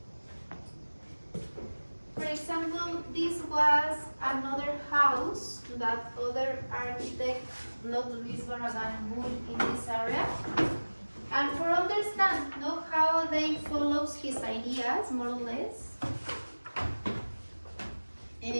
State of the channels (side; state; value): both; inverted; correlation -1.00